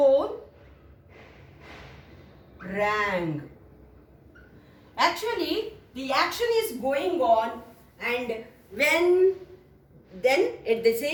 rang. Actually, the action is going on, and then at the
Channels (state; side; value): identical; both; correlation 1.00